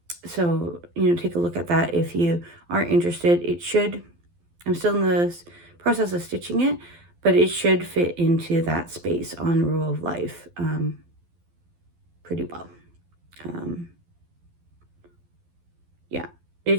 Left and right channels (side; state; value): left; late; 12 ms